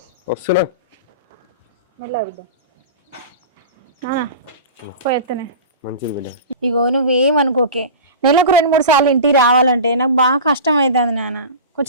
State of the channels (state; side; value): inverted; both; correlation -0.32